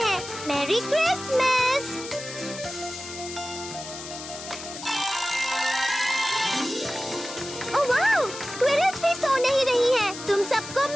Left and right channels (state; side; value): noise; left; hiss, 11 dB below the sound